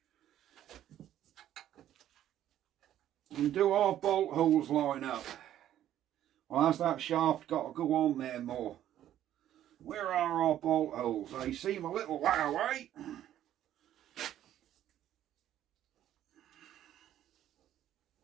And do our bolt holes line up? Well, has that shaft got to go on there more? Where are our bolt holes? They seem a little way away.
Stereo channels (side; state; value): left; quieter; 11.8 dB